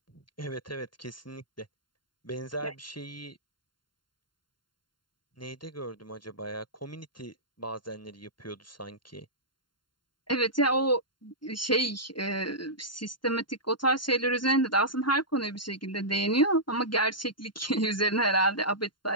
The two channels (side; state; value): right; late; 0.72 ms